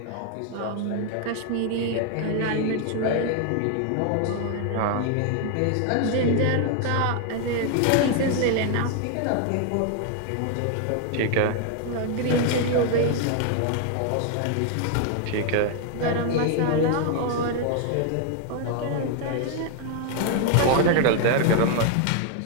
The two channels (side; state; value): both; different; correlation 0.00